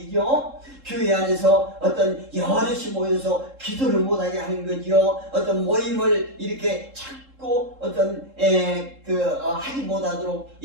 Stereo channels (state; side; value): late; left; 3.7 ms